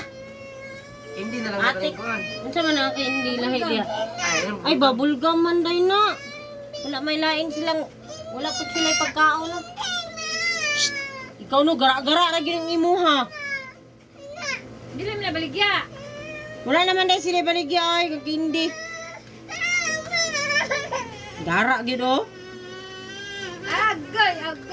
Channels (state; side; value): identical; both; correlation 1.00